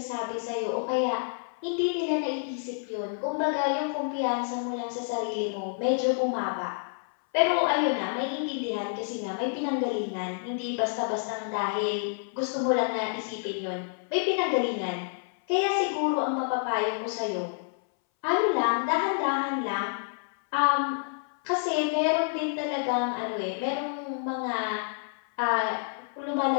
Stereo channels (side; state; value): right; silent; 59 dB below the other